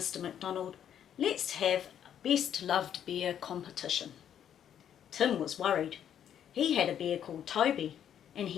McDonald. Let's have a best loved bear competition. Tim was worried. He had a bear called Toby, and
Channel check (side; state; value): right; quieter; 9.5 dB